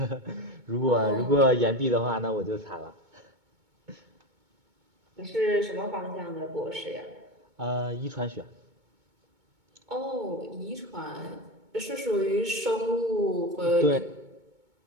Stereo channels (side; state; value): left; late; 2.2 ms